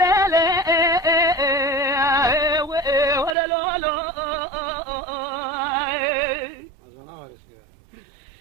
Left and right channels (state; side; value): drops out; left; at 3.4 s